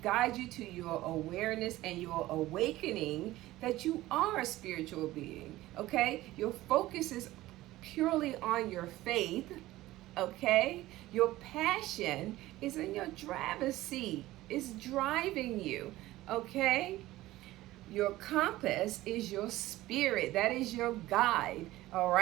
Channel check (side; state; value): left; quieter; 16.8 dB